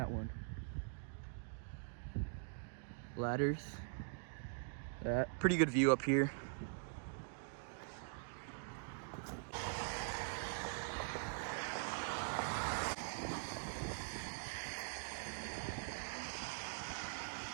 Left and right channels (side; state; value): left; silent; digital silence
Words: one. Ladders. That pretty good view up here.